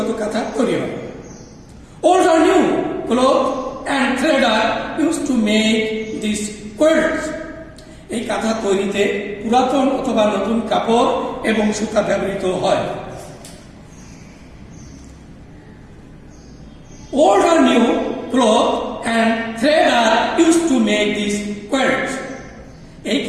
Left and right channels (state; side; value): identical; both; correlation 1.00